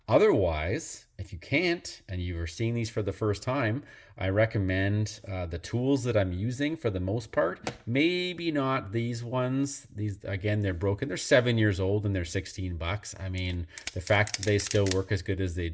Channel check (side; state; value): both; identical; correlation 1.00